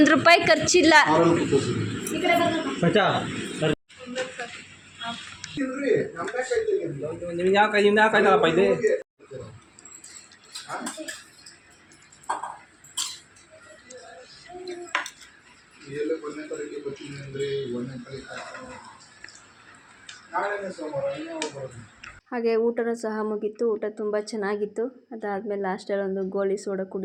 ಖರ್ಚಿಲ್ಲ. ನಿಮ್ಗೆ ಯಾವ ಕಾಯ್ತಾರಪ್ಪ ಇದೆ. ಹಾಗೆ ಊಟನೂ ಸಹ ಮುಗೀತು. ಊಟ ತುಂಬ ಚೆನ್ನಾಗಿತ್ತು. ಅದಾದಮೇಲೆ ಲಾಸ್ಟಲ್ಲಿ ಒಂದು ಗೋಲಿ ಸೋಡಾ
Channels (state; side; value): identical; both; correlation 1.00